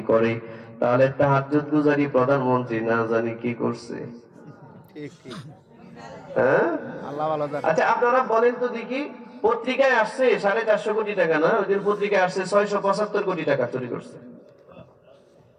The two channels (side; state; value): both; identical; correlation 1.00